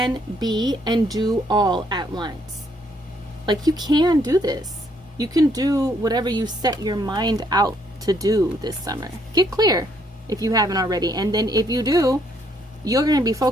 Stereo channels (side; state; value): both; normal; correlation 0.70